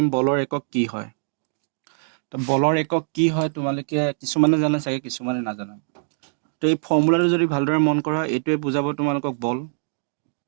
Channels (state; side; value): silent; left; digital silence